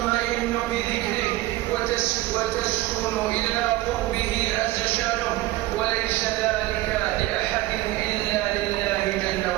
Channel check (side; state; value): left; quieter; 17.5 dB